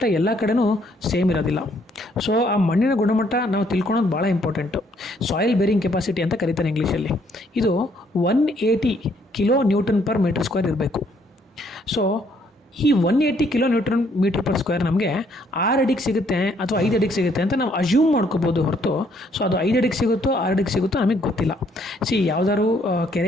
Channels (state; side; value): normal; both; correlation 0.67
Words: ಎಲ್ಲ ಕಡೆನೂ ಸೇಮ್ ಇರೋದಿಲ್ಲ. ಸೊ ಆ ಮಣ್ಣಿನ ಗುಣಮಟ್ಟ ನಾವು ತಿಳ್ಕೊಳೋದು ಭಾಳ ಇಂಪಾರ್ಟೆಂಟು. ಸಾಯಿಲ್ ಬೇರಿಂಗ್ ಕೆಪಾಸಿಟಿ ಅಂತ ಕರೀತಾರೆ ಇಂಗ್ಲೀಷಲ್ಲಿ. ಇದು 180 kilo newton per metre square ಇರಬೇಕು. ಸೊ ಈ 180 kilo newton metre per square ನಮಗೆ 6 ಅಡಿಗೆ ಸಿಗುತ್ತೆ ಅಥವಾ 5 ಅಡಿಗೆ ಸಿಗುತ್ತೆ ಅಂತ ನಾವು ಅಸ್ಯೂಮ್ ಮಾಡ್ಕೋಬೋದು ಹೊರತು, ಸೊ ಅದು 5 ಅಡಿಗೆ ಸಿಗುತ್ತೋ 6 ಅಡಿಗೆ ಸಿಗುತ್ತೋ ನಮಗೆ ಗೊತ್ತಿಲ್ಲ. ಯಾವುದಾದ್ರು